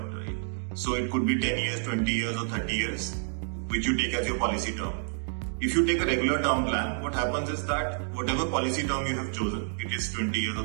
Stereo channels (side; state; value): left; silent; digital silence